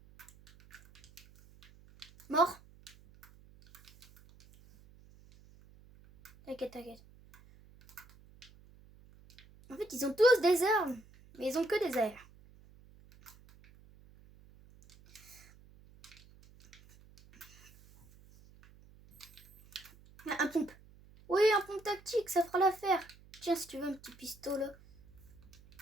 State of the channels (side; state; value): right; noise; hum, 24 dB below the sound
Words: Mort. T'inquiète, t'inquiète. En fait, ils ont tous des armes. Mais ils ont que des airs. Un pompe. Oui, un pompe tactique, ça fera l'affaire. Tiens, si tu veux un petit pistolet.